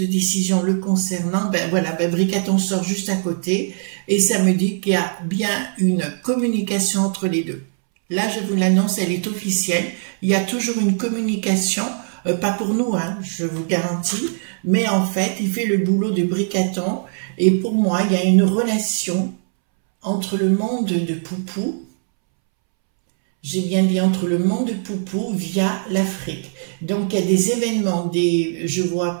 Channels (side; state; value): left; silent; 65 dB below the other